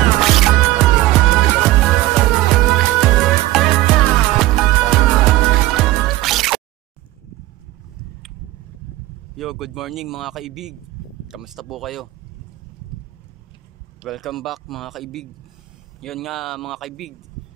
Yo, good morning mga kaibig. Kamusta po kayo? Welcome back mga kaibig. Yun nga mga kaibig,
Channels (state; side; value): quieter; left; 16.9 dB